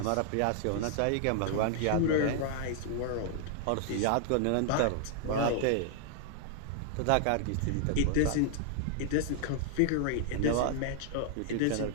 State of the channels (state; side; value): different; both; correlation 0.00